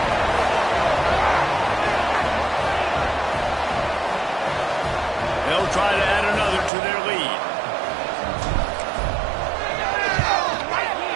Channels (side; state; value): left; drops out; at 6.7 s